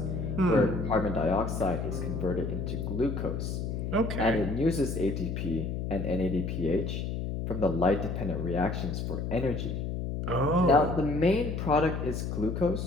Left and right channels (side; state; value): left; noise; hum, 3 dB below the sound